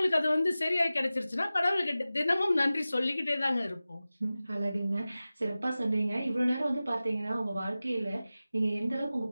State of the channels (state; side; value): inverted; both; correlation -0.96